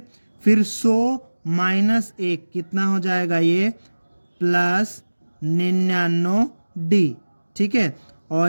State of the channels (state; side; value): inverted; both; correlation -1.00